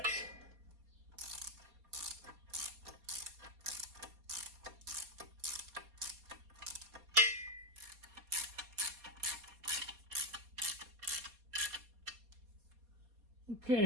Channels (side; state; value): left; late; 4.2 ms